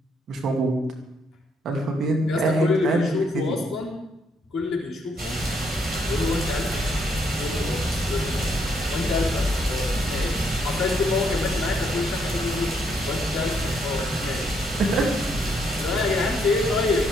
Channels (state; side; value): normal; both; correlation 0.72